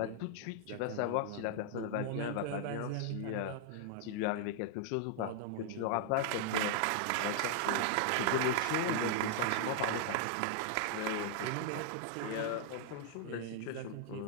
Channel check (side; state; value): both; different; correlation -0.01